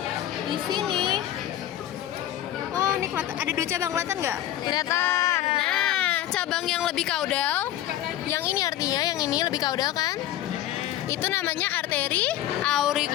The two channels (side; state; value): right; quieter; 12.9 dB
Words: di sini. Oh, ini kelihatan. Ada dua cabang, kelihatan nggak? Kelihatan. Nah, cabang yang lebih kaudal, yang ini artinya yang ini lebih kaudal kan? Itu namanya arteri